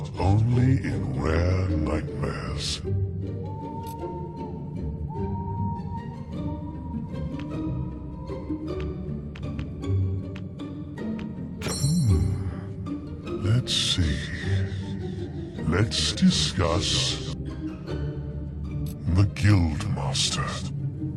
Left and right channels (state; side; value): identical; both; correlation 1.00